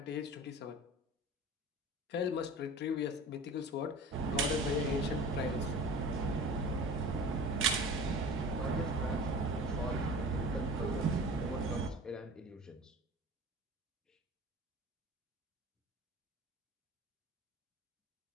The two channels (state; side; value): normal; both; correlation 0.39